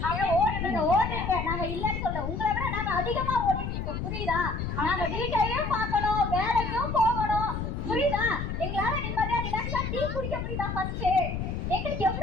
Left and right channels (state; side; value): noise; left; rumble, 4 dB below the sound